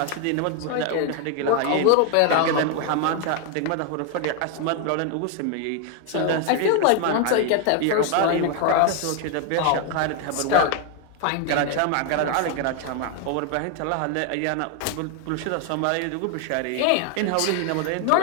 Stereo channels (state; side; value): different; both; correlation 0.01